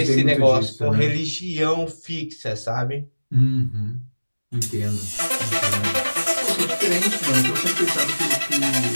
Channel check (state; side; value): inverted; both; correlation -1.00